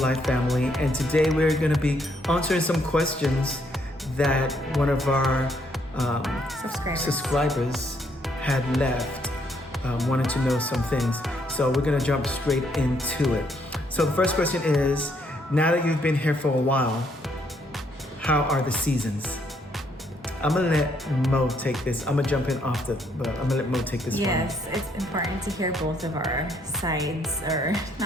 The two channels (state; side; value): normal; both; correlation 0.71